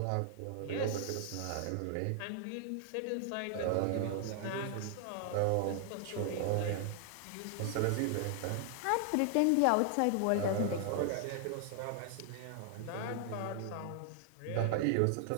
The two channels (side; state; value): both; different; correlation 0.00